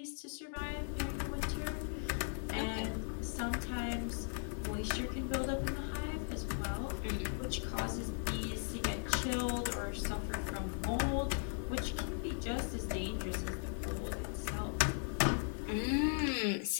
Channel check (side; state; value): right; silent; 52 dB below the other